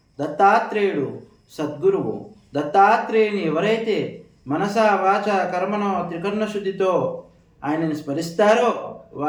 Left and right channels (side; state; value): both; identical; correlation 1.00